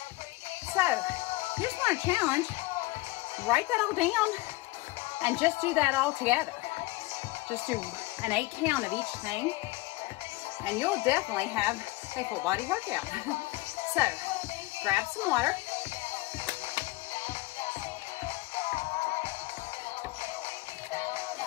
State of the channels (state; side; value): quieter; right; 21.0 dB